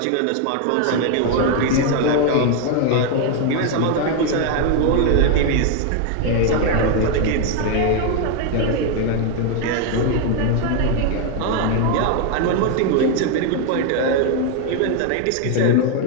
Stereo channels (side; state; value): both; different; correlation 0.01